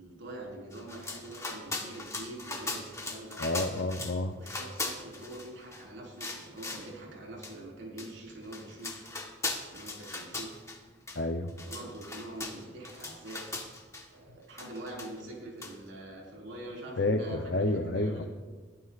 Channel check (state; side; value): normal; both; correlation 0.23